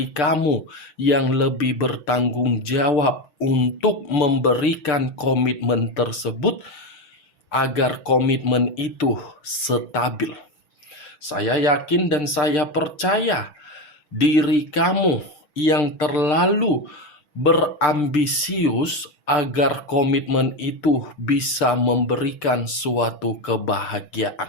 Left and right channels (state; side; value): late; right; 6.7 ms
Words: kamu yang lebih bertanggung jawab untuk memberikan komitmen tersebut agar komitmen itu stabil. Saya yakin dan saya percaya diri kamu yang terlalu berambisius agar komitmen itu bisa memberikan suatu